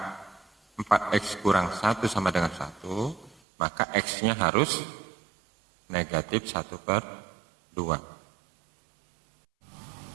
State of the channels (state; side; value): drops out; left; at 3.4 s